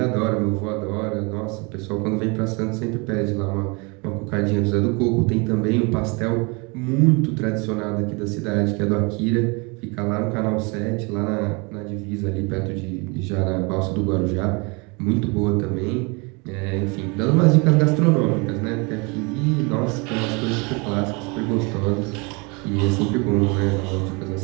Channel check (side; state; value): left; quieter; 29.7 dB